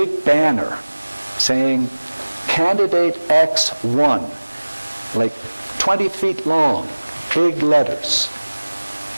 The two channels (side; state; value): both; inverted; correlation -1.00